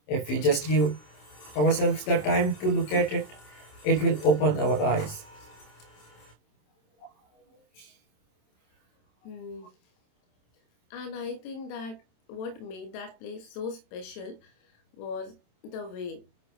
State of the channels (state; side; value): late; right; 27 ms